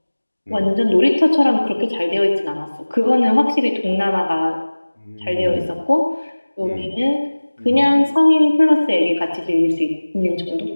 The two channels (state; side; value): inverted; both; correlation -1.00